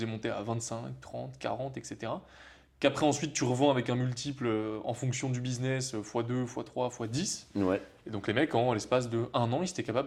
monter à 25, 30, 40, etc. Qu'après, ensuite, tu revends avec un multiple en fonction du business, x2, x3, x10. Ouais. Et donc les mecs, en l'espace de 1 an, ils étaient capables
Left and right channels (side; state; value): both; identical; correlation 1.00